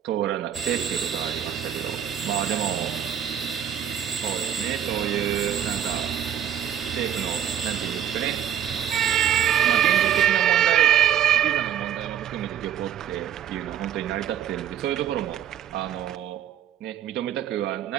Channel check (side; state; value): left; quieter; 9.6 dB